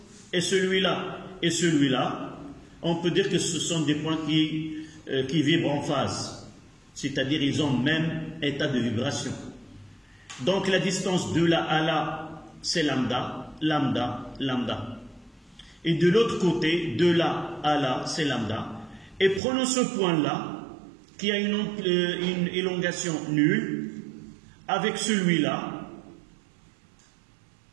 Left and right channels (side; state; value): left; drops out; at 19.4 s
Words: et celui-là, on peut dire que ce sont des points qui vibrent en phase. C'est-à-dire ils ont le même état de vibration. Donc la distance de là à là, c'est lambda, lambda, lambda. Et de l'autre côté, de là à là, c'est lambda. Et prenons ce point-là, qui a une élongation nulle, avec celui-là.